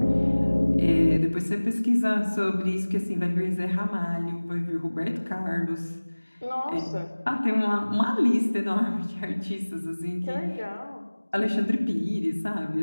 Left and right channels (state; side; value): inverted; both; correlation -1.00